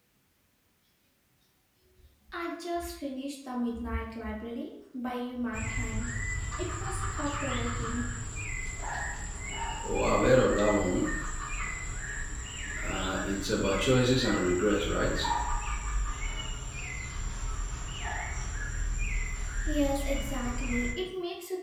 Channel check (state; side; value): identical; both; correlation 1.00